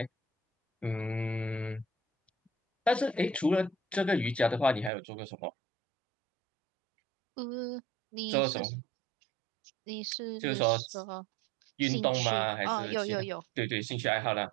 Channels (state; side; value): drops out; left; at 4.9 s